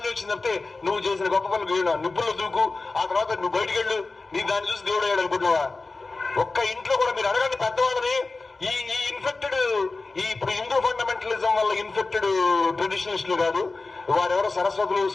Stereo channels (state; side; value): quieter; right; 3.6 dB